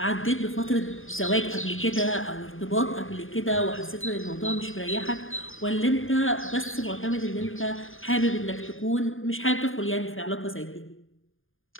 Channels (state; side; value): late; right; 0.59 ms